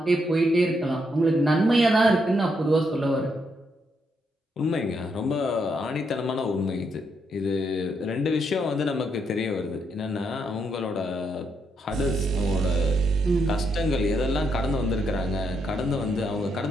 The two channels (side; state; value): both; normal; correlation 0.78